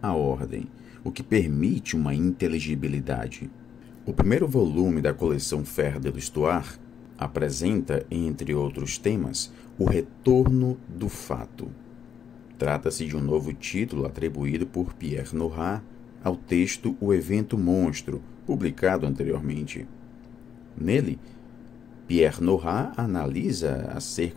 à ordem, o que permite uma inteligibilidade. O primeiro volume da coleção Fer de l'Histoire apresenta, entre outros temas, o retorno do fato. Trata-se de um novo título atribuído por Pierre Nora ao texto O Evento Monstro, publicado anteriormente. Nele, Pierre Nora analisa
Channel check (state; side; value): quieter; right; 8.0 dB